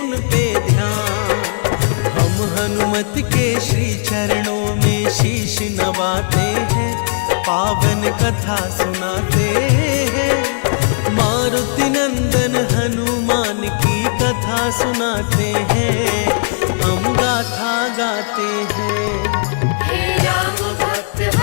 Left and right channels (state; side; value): silent; right; digital silence